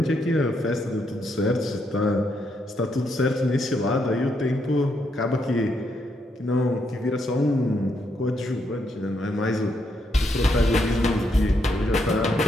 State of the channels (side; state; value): both; normal; correlation 0.77